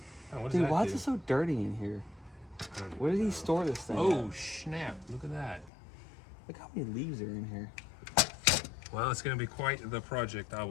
what does Dude, that why do? is it so dirty in here? Where did he store this thing Oh, at? snap. Look at that. Look how many leaves are in here. Well, it's going to be quite the project, I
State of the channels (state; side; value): drops out; right; at 5.7 s